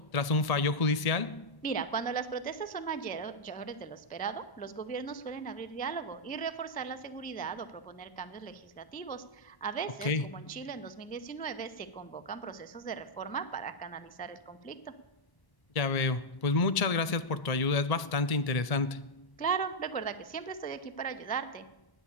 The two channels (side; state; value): right; late; 1.1 ms